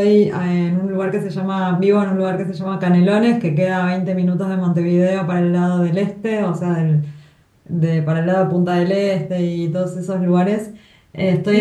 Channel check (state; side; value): identical; both; correlation 1.00